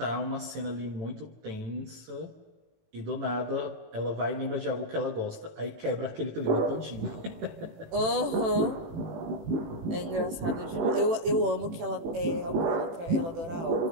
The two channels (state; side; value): late; left; 18 ms